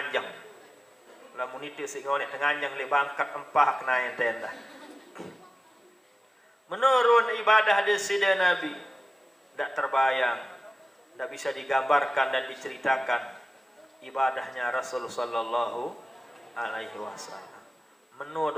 Lamun itu singone nganjang le bangkat empah naen tenda. Menurun ibadah di sida Nabi tidak terbayang, tidak bisa digambarkan dan diceritakan ibadahnya Rasul Sallallahu Alaihi Wasallam. Menu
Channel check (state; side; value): normal; both; correlation 0.96